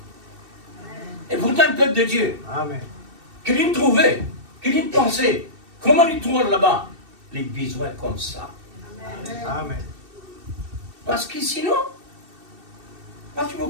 Et pourtant, le peuple de Dieu, Amen. qu'il y trouvait, qu'il y pensait, comment il trouve là-bas? Les besoins comme ça. Amen. Parce que sinon, parce que vous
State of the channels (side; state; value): left; late; 2.7 ms